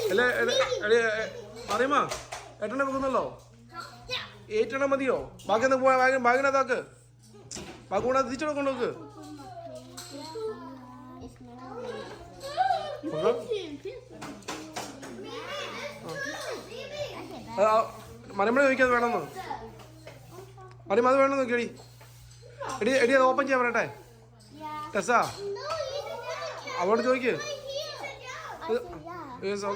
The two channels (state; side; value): identical; both; correlation 1.00